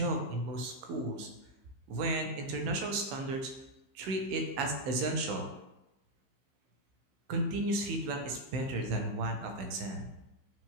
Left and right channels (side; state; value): left; late; 15 ms